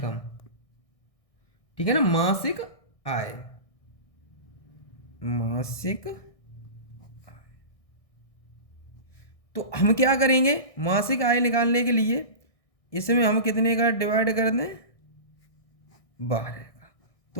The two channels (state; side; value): late; right; 1.6 ms